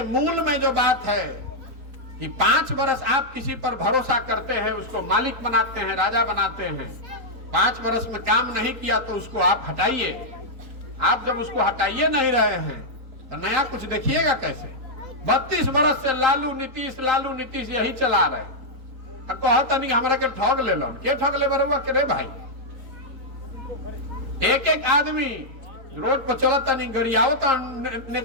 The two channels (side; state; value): left; late; 4.5 ms